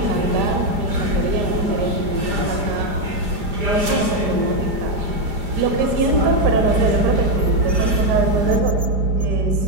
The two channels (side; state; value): left; late; 4.9 ms